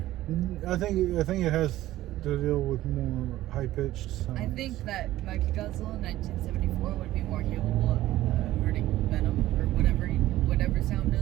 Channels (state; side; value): quieter; left; 15.2 dB